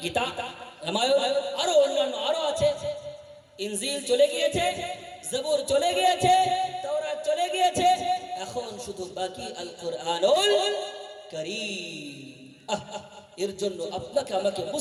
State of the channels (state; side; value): identical; both; correlation 1.00